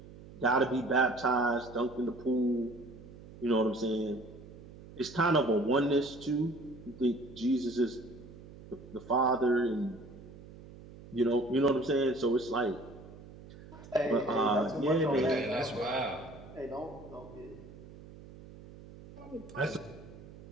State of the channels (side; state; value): right; noise; hum, 18 dB below the sound